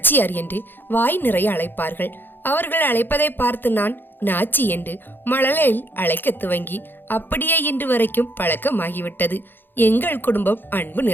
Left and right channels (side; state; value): right; late; 0.097 ms